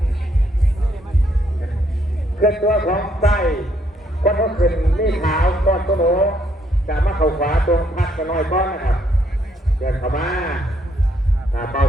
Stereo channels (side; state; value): both; normal; correlation 0.71